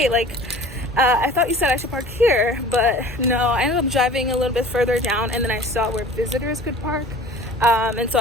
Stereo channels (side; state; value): both; normal; correlation 0.44